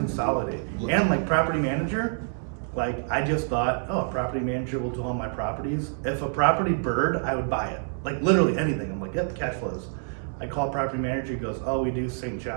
And like property manager, like I just thought, oh, a property manager will do all my properties. If a property bird, I would buy it. Like literally anything. I'm like, yep, cash flows. I call property manager, he goes, oh, we do St.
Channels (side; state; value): left; silent; digital silence